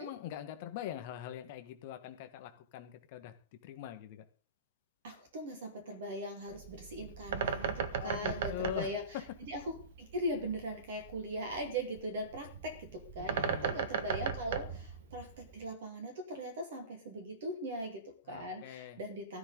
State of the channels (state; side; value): inverted; both; correlation -0.31